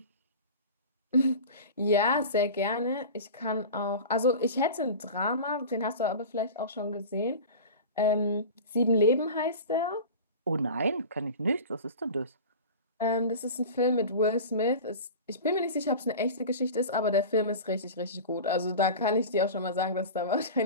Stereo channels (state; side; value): inverted; both; correlation -0.33